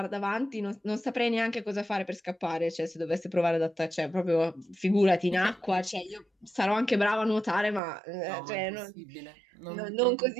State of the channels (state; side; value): drops out; left; at 7.8 s